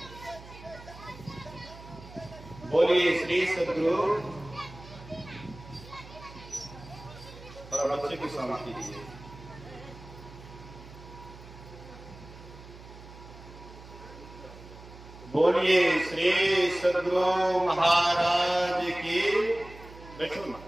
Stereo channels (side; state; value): right; noise; hum, 17 dB below the sound